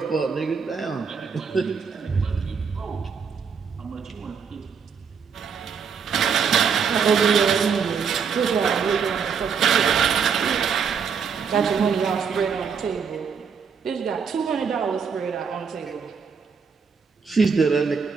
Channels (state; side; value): quieter; left; 6.2 dB